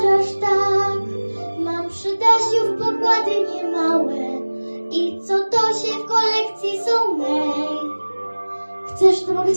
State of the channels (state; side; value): inverted; both; correlation -1.00